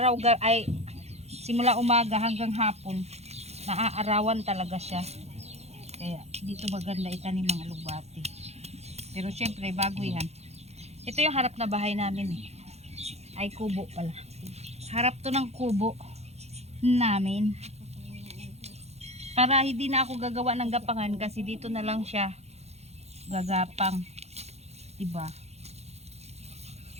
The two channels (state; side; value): late; left; 0.31 ms